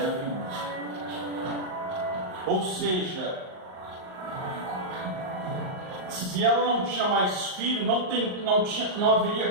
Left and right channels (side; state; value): left; late; 38 ms